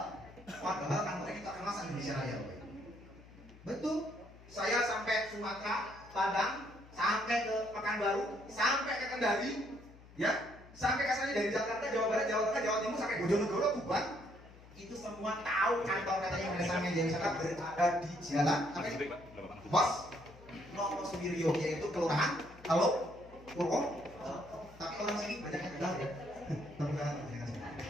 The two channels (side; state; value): left; noise; hum, 21 dB below the sound